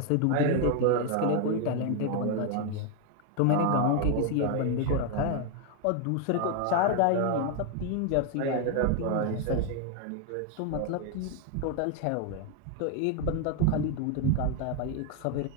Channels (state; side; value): different; both; correlation 0.01